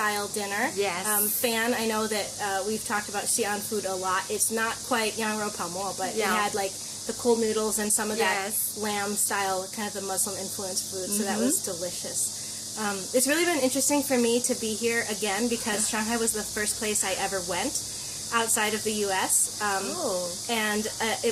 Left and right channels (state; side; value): identical; both; correlation 1.00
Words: dinner. Yes. Fan, I know that we've talked about Xi'an food a lot. It's not quite yang rou pao mo, but it had like the cold noodles and some of that lamb-style, kind of the Muslim-influenced food, so that was delicious. It's really been interesting for me to be here again because Shanghai was the first place I ever went outside of the U.S. And